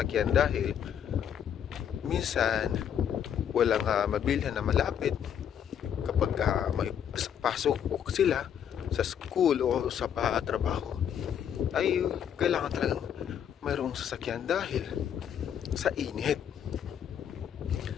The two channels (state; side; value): quieter; right; 8.9 dB